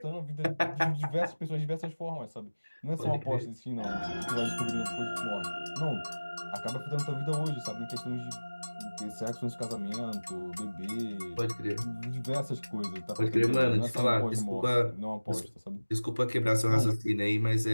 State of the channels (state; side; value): inverted; both; correlation -1.00